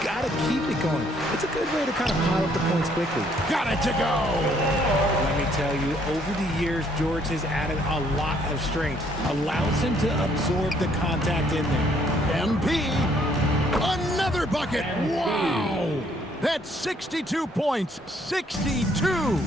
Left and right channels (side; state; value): both; normal; correlation 0.65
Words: to keep it going. It's a good way to kind of pile up the points quickly. Got it to go. Let me tell you, over the years, George has added a lot of strength. Allows him to absorb the contact in there. MP, another bucket. Wow. That's 62 points, 62.